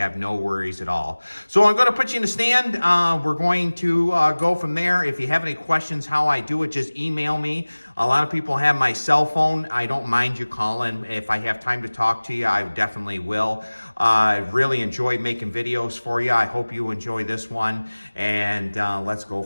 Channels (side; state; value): both; inverted; correlation -1.00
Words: no worries at all. So I'm going to put you in the stand. We're going to go from there. If you have any questions how I do it, just email me. A lot of people have my cell phone. I don't mind you calling. If I have time to talk to you, I definitely will. I really enjoy making videos for you. I hope you enjoy this one, and let's go